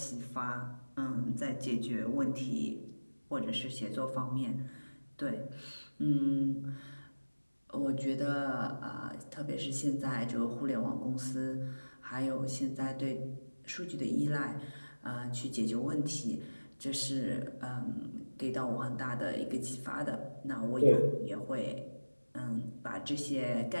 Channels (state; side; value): inverted; both; correlation -1.00